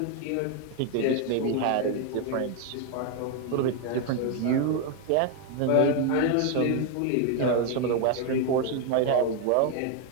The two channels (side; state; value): both; different; correlation 0.01